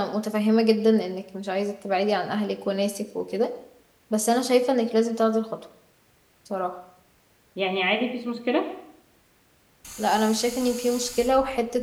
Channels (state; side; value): identical; both; correlation 1.00